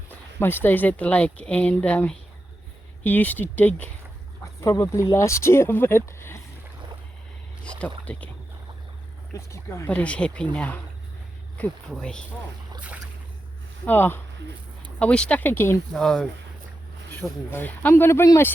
most days at the lake, and he used to dig probably last year, but he stopped digging. Let's keep going. But he's happy now. Good boy. Oh, are we stuck again? no, shouldn't be. I'm going to bring my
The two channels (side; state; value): both; normal; correlation 0.89